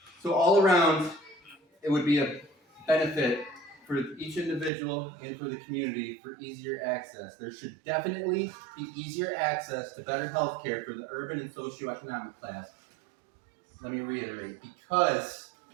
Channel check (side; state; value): left; drops out; at 4.7 s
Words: So all around, it would be a benefit for each individual and for the community for easier access. There should definitely be easier access to better health care for the urban and socioeconomic class. Let me reiterate, because